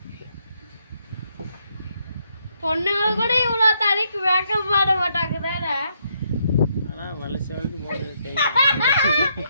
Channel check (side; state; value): both; inverted; correlation -0.75